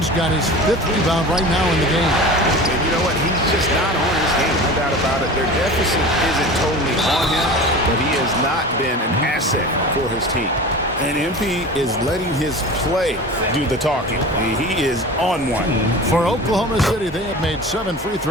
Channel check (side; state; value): both; normal; correlation 0.35